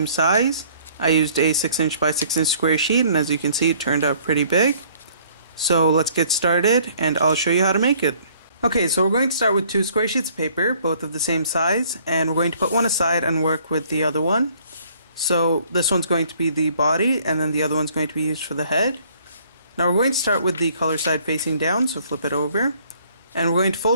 size. I used a 6" by 6" square sheet, and as you can see it turned out pretty big. So let's get started and I'll show you how to make it. Okay, so we're going to start with two square sheets of paper, both of the same size, and we're going to put one aside and work with the other one. So this one's going to be the body, and then the other one's going to be used for the head. Now we're going to start with the color side facing down, so flip it over. And we're going to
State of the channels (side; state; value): both; inverted; correlation -0.59